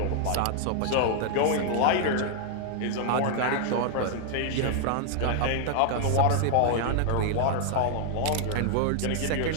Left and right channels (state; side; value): different; both; correlation 0.00